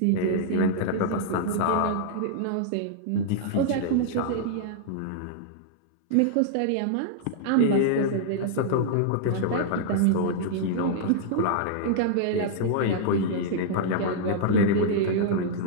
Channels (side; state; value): both; different; correlation -0.01